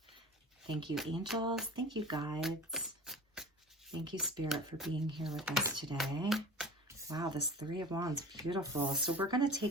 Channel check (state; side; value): normal; both; correlation 0.37